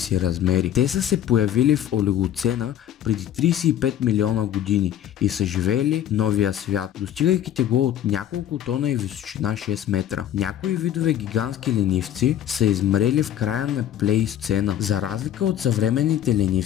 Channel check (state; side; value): quieter; right; 10.8 dB